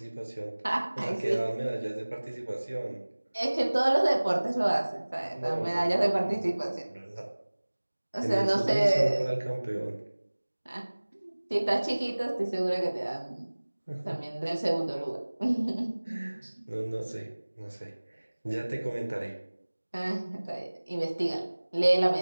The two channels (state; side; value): inverted; both; correlation -1.00